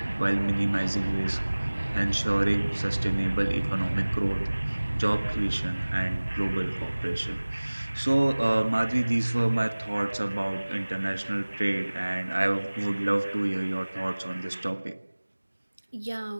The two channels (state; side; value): inverted; both; correlation -1.00